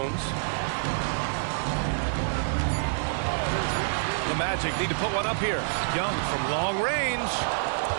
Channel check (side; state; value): left; silent; 55 dB below the other